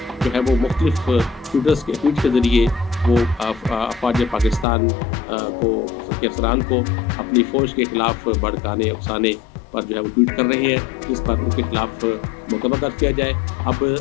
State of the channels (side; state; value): right; drops out; at 4.7 s